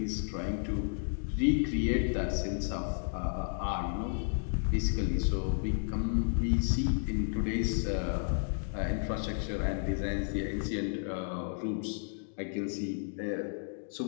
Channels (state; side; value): silent; right; digital silence